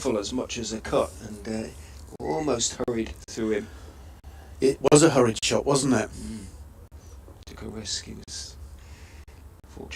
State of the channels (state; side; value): identical; both; correlation 1.00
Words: as much as a cut, and almost hurried through him. It was a hurried shot, wasn't it? Took a risk. He was